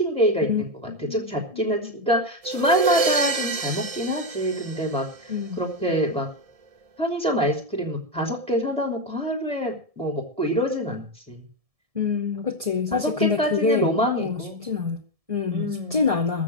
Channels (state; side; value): late; left; 1.7 ms